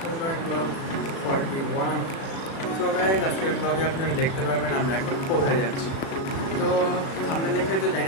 to my vlog 41. So guys, আজকের ব্লগে আপনারা দেখতে পাবেন আমরা এখন কোথায় যাচ্ছি। তো সামনে দেখে তো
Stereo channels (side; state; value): right; late; 36 ms